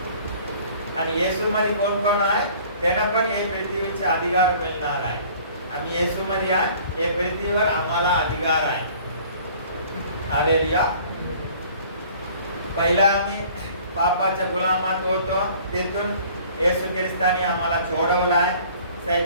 आणि येशू मध्ये कोण कोण आहे त्यांना पण हे पृथ्वीचे अधिकार मिळणार आहे. आम्ही येशू मध्ये आहे, हे पृथ्वीवर आम्हाला अधिकार आहे. हालेलुया. पहिला आम्ही पापाच्या गुलामात होतो, तिथून येशू ख्रिस्ताने आम्हाला सोडवलाय.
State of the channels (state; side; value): inverted; both; correlation -0.51